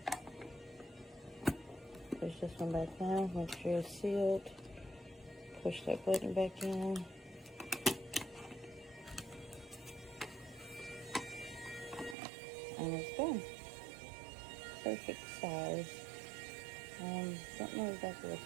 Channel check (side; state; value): left; drops out; at 12.2 s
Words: Push this one back down. Make sure it's sealed. Push that button back in. And it's done. Perfect size. Don't know exactly what